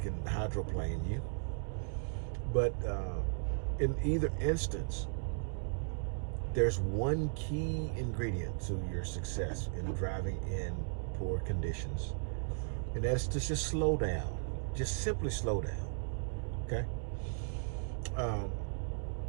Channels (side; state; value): left; silent; digital silence